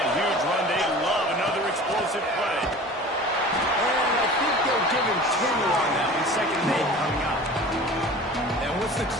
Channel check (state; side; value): normal; both; correlation 0.40